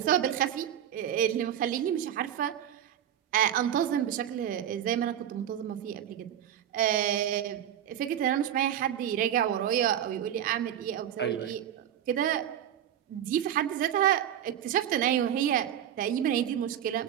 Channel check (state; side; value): quieter; left; 10.3 dB